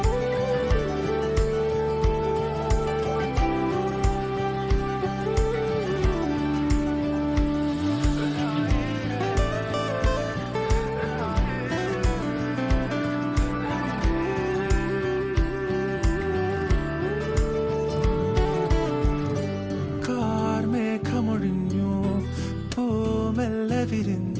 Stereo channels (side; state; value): both; identical; correlation 1.00